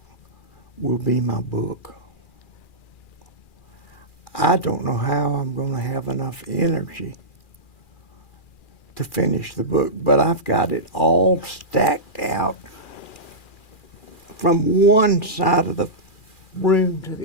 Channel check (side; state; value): right; late; 2.4 ms